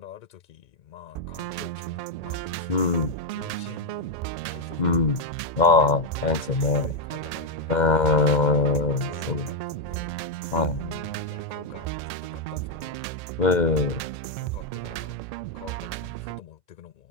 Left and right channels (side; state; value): right; late; 1.8 ms